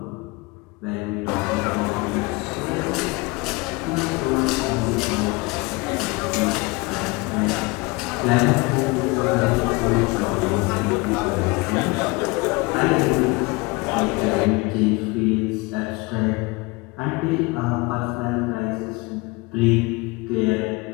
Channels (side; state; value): right; quieter; 25.3 dB